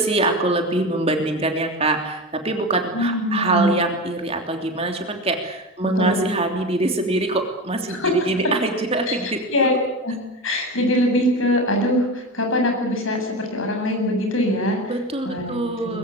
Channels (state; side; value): normal; both; correlation 0.24